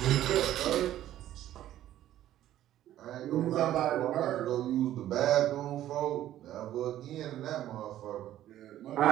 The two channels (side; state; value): left; quieter; 12.8 dB